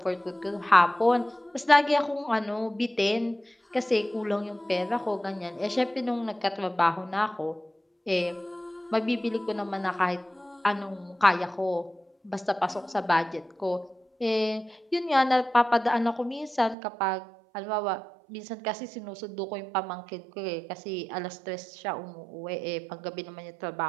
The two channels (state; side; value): drops out; left; at 16.8 s